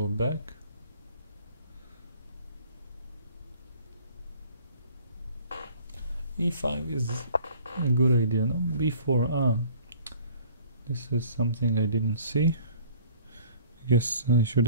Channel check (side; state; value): both; inverted; correlation -0.51